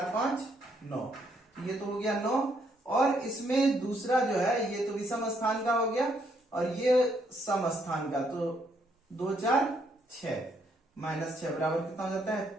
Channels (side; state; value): both; normal; correlation 0.72